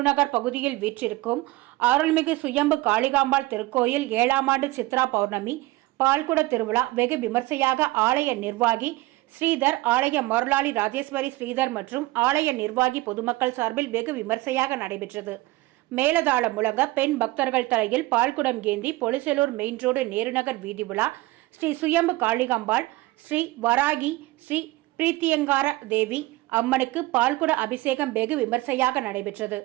பகுதியில் வீற்றிருக்கும் அருள்மிகு சுயம்பு காளிகாம்பாள் திருக்கோயில் 7ஆம் ஆண்டு சித்ரா பௌர்ணமி பால்குட திருவிழா வெகு விமர்சையாக ஆலய நிர்வாகி ஸ்ரீதர், ஆலய மருளாளி ராஜேஸ்வரி ஸ்ரீதர் மற்றும் ஆலய நிர்வாகி பொதுமக்கள் சார்பில் வெகு விமர்சையாக நடைபெற்றது. மேலதாளம் முழங்க பெண் பக்தர்கள் தலையில் பால்குடம் ஏந்தி பொலிச்சலூர் மெயின் ரோடு நேருநகர் வீதி உலா ஸ்ரீ சுயம்பு காளிகாம்பாள், ஸ்ரீ வராகி, ஸ்ரீ பிரீத்தியங்கார தேவி அம்மனுக்கு பால்குட அபிஷேகம் வெகு விமர்சையாக நடைபெற்றது.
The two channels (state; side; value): quieter; left; 19.6 dB